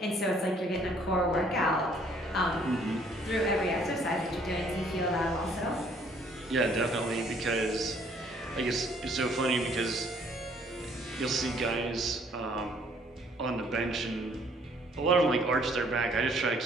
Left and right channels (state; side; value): normal; both; correlation 0.62